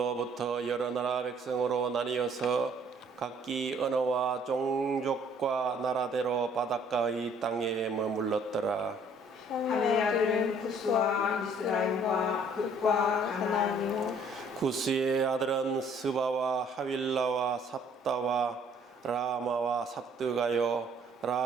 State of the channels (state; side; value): normal; both; correlation 0.59